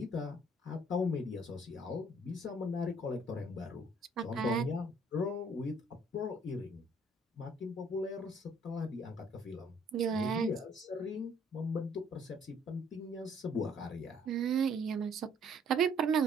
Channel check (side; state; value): both; normal; correlation 0.61